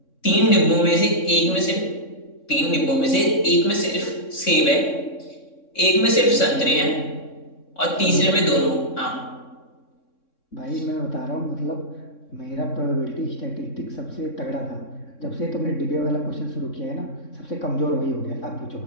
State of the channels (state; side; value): late; right; 3.6 ms